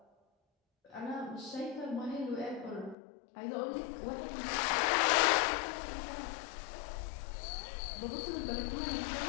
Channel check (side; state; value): right; drops out; at 3.0 s